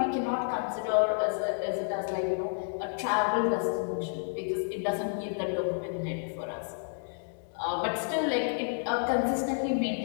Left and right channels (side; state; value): right; silent; digital silence